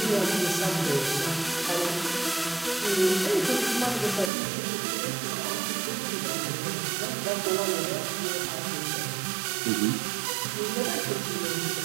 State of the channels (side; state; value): left; drops out; at 4.3 s